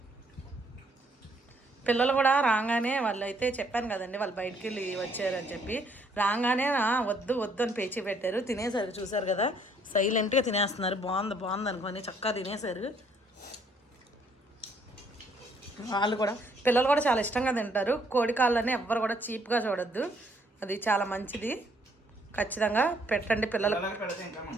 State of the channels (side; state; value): both; normal; correlation 0.66